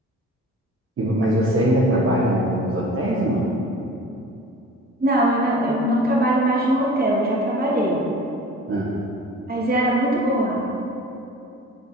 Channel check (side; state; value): both; normal; correlation 0.43